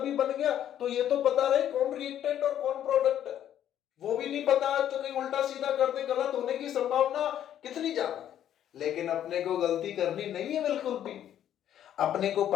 बन गया तो ये तो पता रहे कौन रिएक्टेंट और कौन प्रोडक्ट है, वो भी नहीं पता तो कहीं उल्टा सीधा कर दे, गलत होने की संभावना कितनी ज्यादा है। लेकिन अपने को गलती करनी नहीं है बिल्कुल भी, अपने को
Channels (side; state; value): right; quieter; 10.7 dB